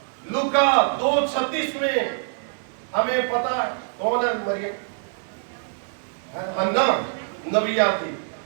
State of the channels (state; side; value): silent; left; 62 dB below the other